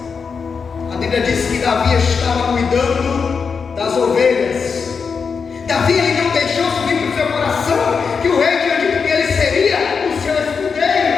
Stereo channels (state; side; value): quieter; right; 5.6 dB